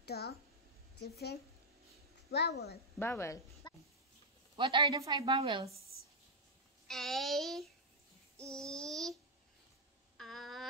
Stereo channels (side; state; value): both; normal; correlation -0.03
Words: the different vowel. Vowel. What are the 5 vowels? A, E,